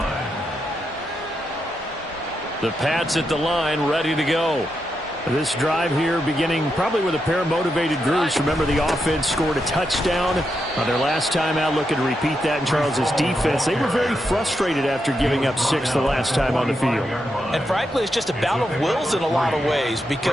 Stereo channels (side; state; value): both; normal; correlation 0.84